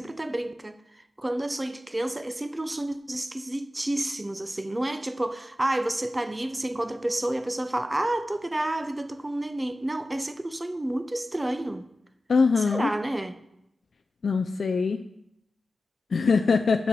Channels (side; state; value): both; normal; correlation 0.94